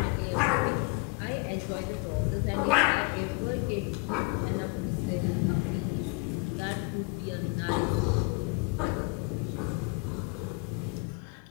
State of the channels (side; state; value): right; quieter; 29.2 dB